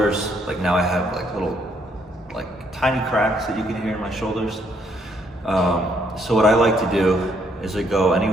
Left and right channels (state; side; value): normal; both; correlation 0.71